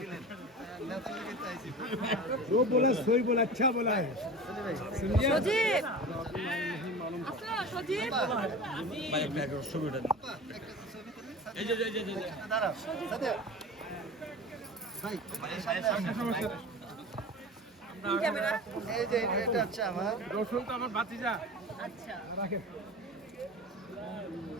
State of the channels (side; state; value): both; normal; correlation 0.33